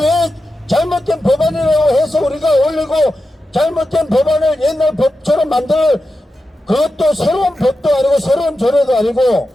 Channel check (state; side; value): normal; both; correlation 0.90